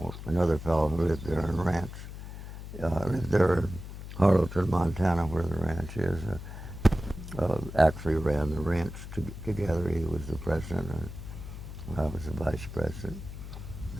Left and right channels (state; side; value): noise; left; hum, 10 dB below the sound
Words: Another fellow who lived there in lived there in Harlowton, Montana, where the ranch is, actually ran the ranch together. He was the president, and I was the vice president.